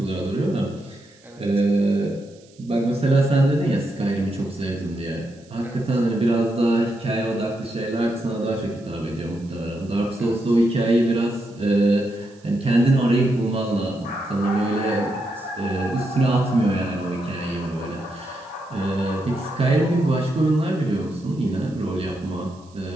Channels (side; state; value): right; noise; hiss, 29 dB below the sound